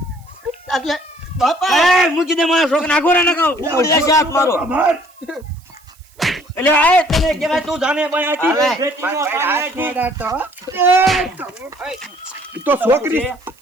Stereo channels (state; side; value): noise; right; hiss, 30 dB below the sound